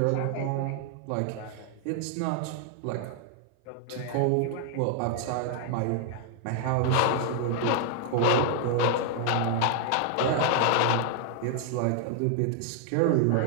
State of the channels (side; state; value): both; different; correlation 0.00